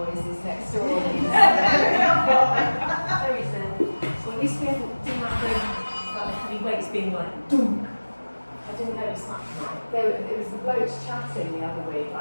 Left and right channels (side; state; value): both; inverted; correlation -1.00